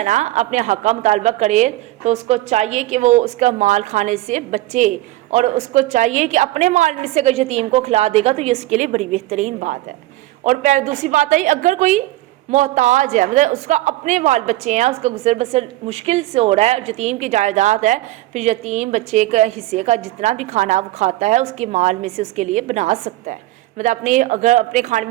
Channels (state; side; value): quieter; left; 17.0 dB